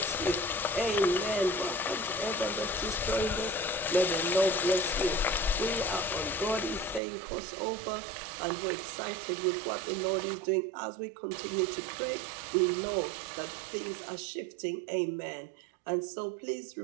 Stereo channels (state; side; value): drops out; left; at 7.0 s